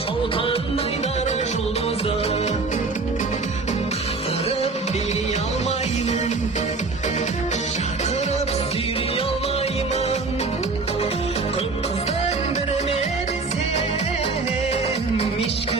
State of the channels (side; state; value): left; quieter; 4.0 dB